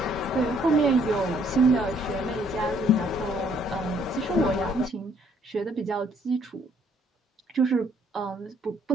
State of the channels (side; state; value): both; normal; correlation 0.65